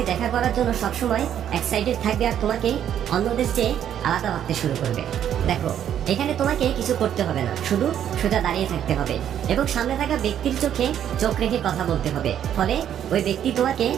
দেখা করার জন্য সবসময় এক্সাইটেড থাকবে আর তোমাকে অন্যদের চেয়ে আলাদা ভাবতে শুরু করবে। দেখো, এখানে তোমাকে কিছু করতে হবে না, শুধু সোজা দাঁড়িয়ে থাকতে হবে এবং সামনে থাকা ব্যক্তির চোখে চোখ রেখে কথা বলতে হবে। ফলে ওই ব্যক্তি তোমাকে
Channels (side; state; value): left; quieter; 9.9 dB